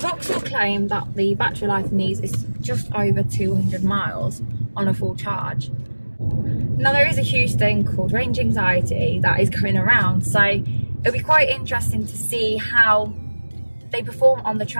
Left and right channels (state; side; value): inverted; both; correlation -1.00